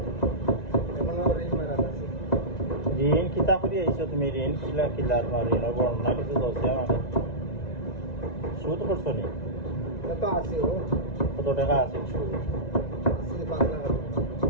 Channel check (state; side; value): late; right; 1.9 ms